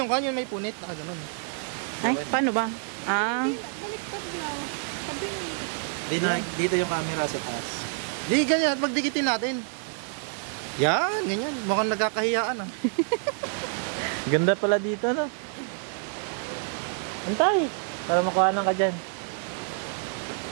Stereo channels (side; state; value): left; silent; 60 dB below the other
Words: yung kanyo, may punit. Ganun. Paano ba? Baliktad na. Kabingi. Dito yung camera sa taas. Di, ganyan. Magdikitin natin. Yan, ganyan. Mukhang nagkakahiyaan. Ganda pala dito, no? Antay, para makuhanan ka dyan.